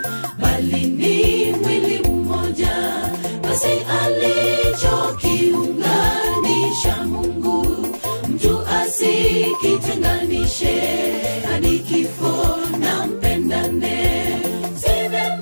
bali ni mwili mmoja, basi alichokiunganisha Mungu, mtu asikitenganishe. Hadi kifo na mpendane. Si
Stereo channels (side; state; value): both; inverted; correlation -1.00